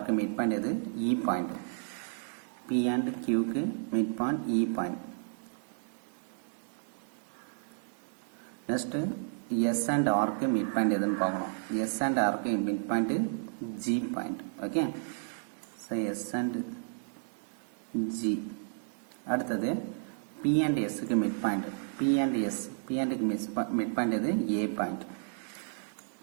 के mid point இது E point. P and Q के mid point E point. Next S and R के mid point எதுன்னு பார்க்கணும். S and R के mid point G point. Okay. So S and G. அடுத்தது P and S के mid point. P and S. P and mid point எது A point.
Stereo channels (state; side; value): silent; left; digital silence